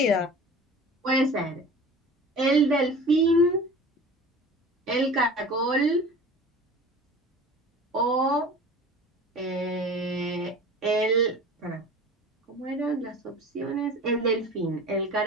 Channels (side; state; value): both; normal; correlation 0.40